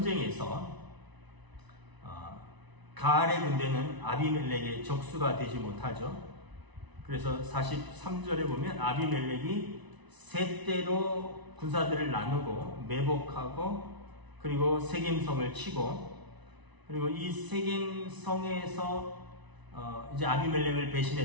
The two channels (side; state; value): left; late; 1.0 ms